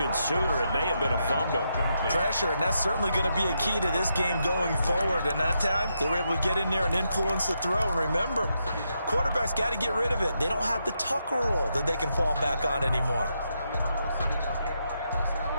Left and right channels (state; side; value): inverted; both; correlation -0.82